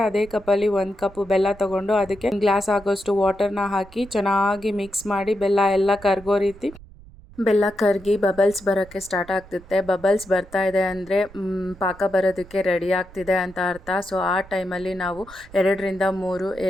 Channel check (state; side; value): noise; right; rumble, 21 dB below the sound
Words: ಅದೇ ಕಪ್ಪಲ್ಲಿ 1 ಕಪ್ ಬೆಲ್ಲ ತೊಗೊಂಡು ಅದಕ್ಕೆ 1 ಗ್ಲಾಸ್ ಆಗೋಷ್ಟು ವಾಟರ್ನ ಹಾಕಿ ಚೆನ್ನಾಗಿ ಮಿಕ್ಸ್ ಮಾಡಿ ಬೆಲ್ಲ ಎಲ್ಲ ಕರಗೋ ರೀತಿ ಬೆಲ್ಲ ಕರಗಿ ಬಬಲ್ಸ್ ಬರೋಕ್ಕೆ ಸ್ಟಾರ್ಟ್ ಆಗ್ತಿರುತ್ತೆ. ಬಬಲ್ಸ್ ಬರ್ತಾ ಇದೆ ಅಂದರೆ ಪಾಕ ಬರೋದಕ್ಕೆ ರೆಡಿ ಆಗ್ತಿದೆ ಅಂತ ಅರ್ಥ. ಸೊ ಆ ಟೈಮಲ್ಲಿ ನಾವು 2ರಿಂದ 3